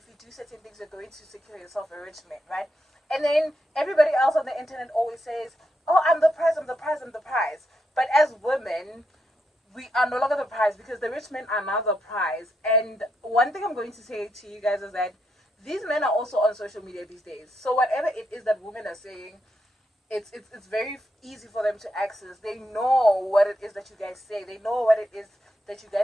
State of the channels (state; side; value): normal; both; correlation 0.81